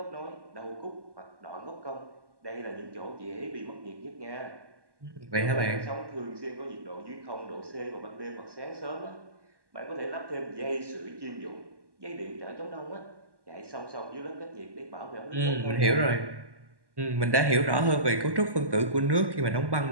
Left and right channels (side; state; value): left; late; 1.1 ms